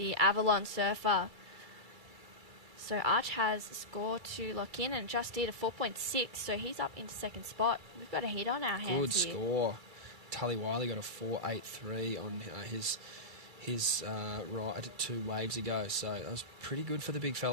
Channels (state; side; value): late; left; 2.3 ms